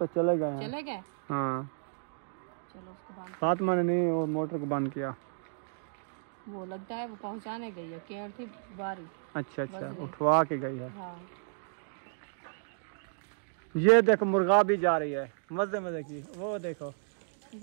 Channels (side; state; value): left; silent; digital silence